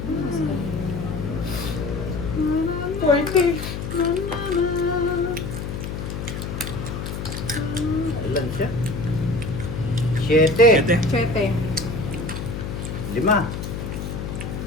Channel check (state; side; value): noise; left; hum, 5 dB below the sound